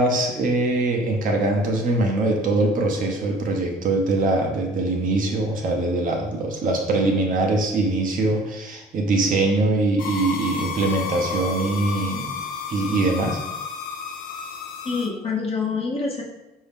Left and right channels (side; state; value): both; normal; correlation 0.49